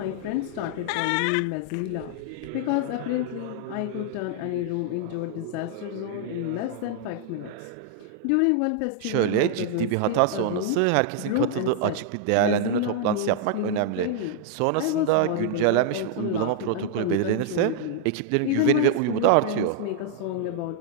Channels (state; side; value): different; both; correlation -0.01